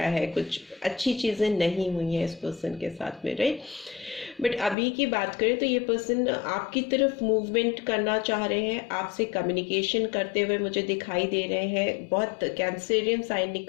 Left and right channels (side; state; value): right; drops out; at 4.8 s